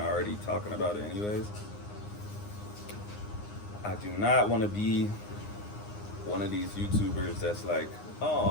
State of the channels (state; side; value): late; right; 9.7 ms